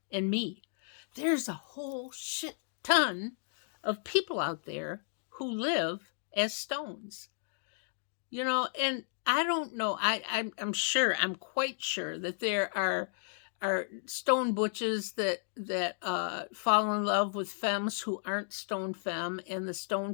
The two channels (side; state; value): right; silent; digital silence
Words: and me. There's a whole shit ton of people out there who live as stones. And I don't know, I'm quite sure that there are stone butches that fall in love with femmes who aren't stone femme, and the stone